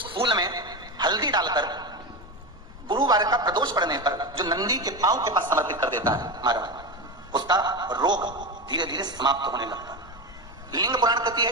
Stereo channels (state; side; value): normal; both; correlation 0.18